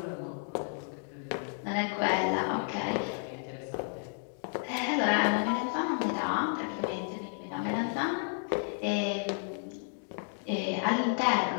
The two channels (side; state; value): right; silent; 56 dB below the other